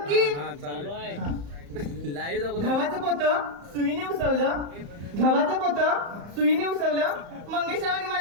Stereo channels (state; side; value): late; left; 35 ms